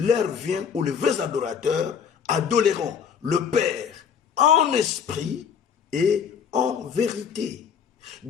vient où les vrais adorateurs adoreront le Père en esprit et en vérité.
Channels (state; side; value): quieter; right; 7.3 dB